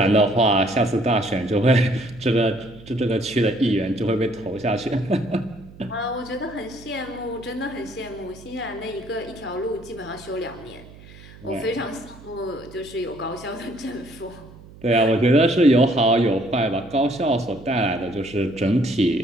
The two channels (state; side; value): noise; right; hum, 20 dB below the sound